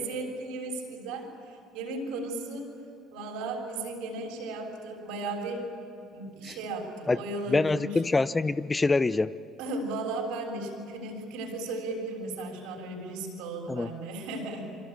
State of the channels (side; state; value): both; normal; correlation 0.73